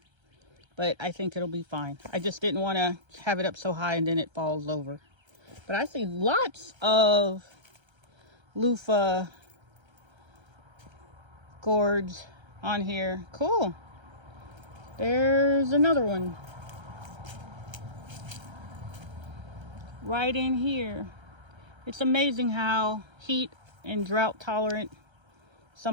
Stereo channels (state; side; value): late; left; 1.3 ms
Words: but I think it'll be fine. I just didn't want to have it up so high and then it falls over. But I see lots of loofah gourds on here. Cool. There's another one right in here. It's amazing how heat and drought tolerant